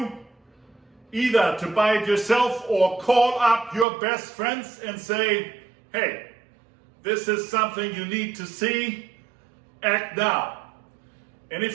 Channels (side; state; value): left; drops out; at 3.9 s